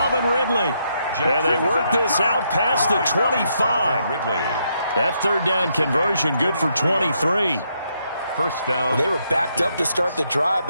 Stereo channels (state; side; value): inverted; both; correlation -0.77